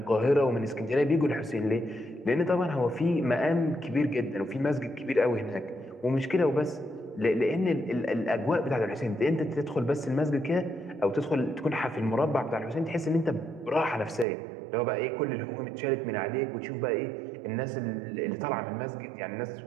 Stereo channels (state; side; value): drops out; left; at 14.2 s